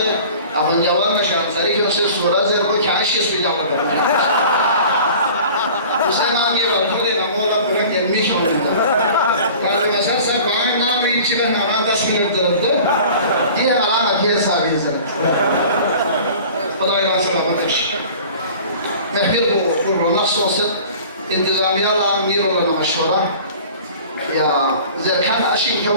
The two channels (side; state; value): both; inverted; correlation -0.44